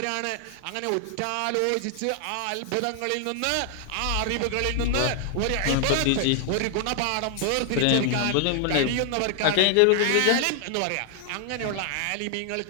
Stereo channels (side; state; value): both; different; correlation 0.00